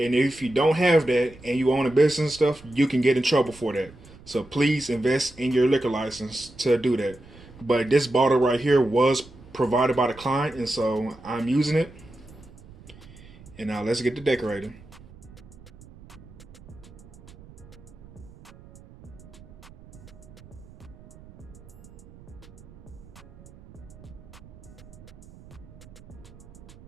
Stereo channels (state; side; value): noise; right; rumble, 21 dB below the sound